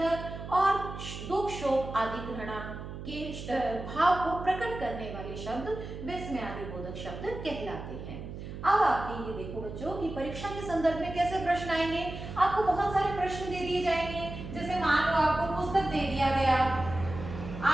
और दुख शोक आदि घृणा के भाव को प्रकट करने वाले शब्द विस्मय आदि बोधक शब्द कहलाते हैं। अब आपके ये देखो बच्चों कि परीक्षा के संदर्भ में कैसे प्रश्न आएंगे। आपको बहुत सारे प्रश्न दे दिए जाएंगे, जैसे मान लो आपको पुस्तक दे दिया गया,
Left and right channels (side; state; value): right; noise; hum, 9 dB below the sound